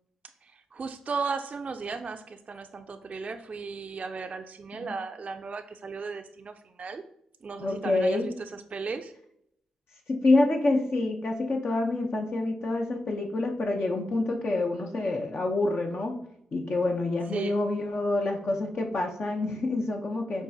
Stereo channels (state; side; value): normal; both; correlation 0.89